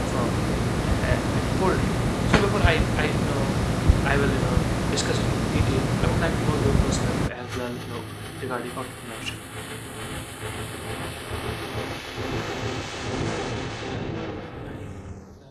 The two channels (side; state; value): both; identical; correlation 1.00